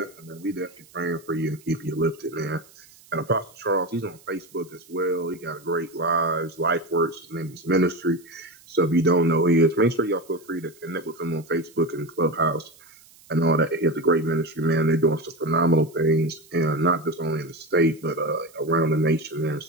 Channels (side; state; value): right; noise; hiss, 26 dB below the sound